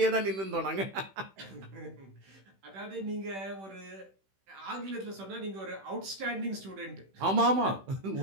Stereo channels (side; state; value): left; late; 16 ms